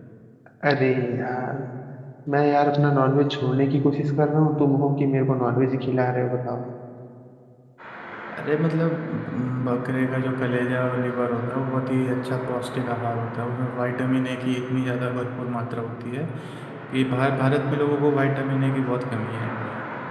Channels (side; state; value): both; identical; correlation 1.00